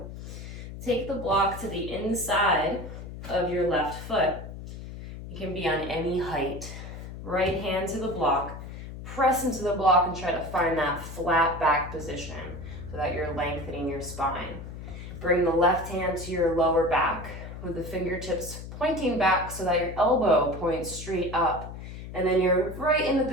Take the block to the inside of your left foot. You can be on any height. Right hand to the block, press into the block and try to find that flat back position so that you're lengthening your spine. Bring the left hand to your lower back with the fingertips pointing back so that your elbow points straight up. And then you're right in the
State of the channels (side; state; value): left; noise; hum, 11 dB below the sound